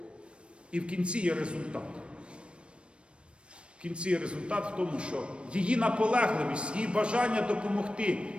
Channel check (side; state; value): left; late; 0.058 ms